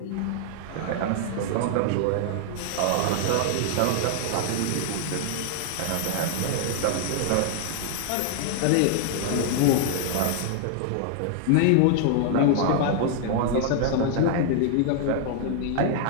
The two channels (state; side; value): different; both; correlation -0.01